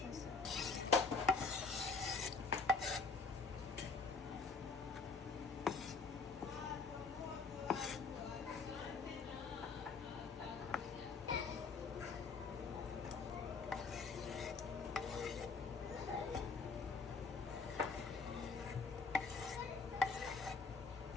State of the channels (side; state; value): right; quieter; 4.4 dB